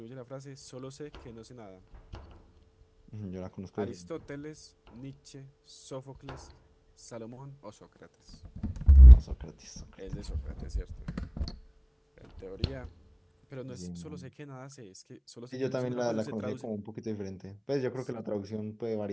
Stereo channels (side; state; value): both; identical; correlation 1.00